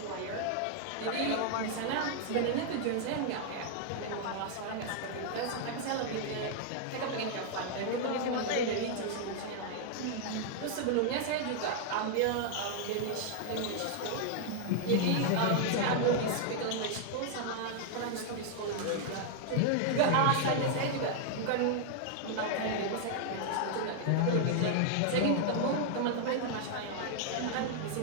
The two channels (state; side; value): different; both; correlation 0.00